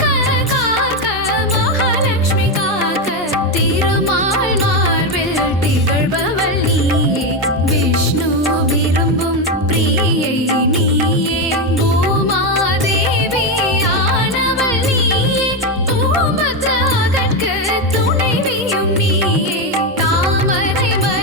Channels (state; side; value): normal; both; correlation 0.10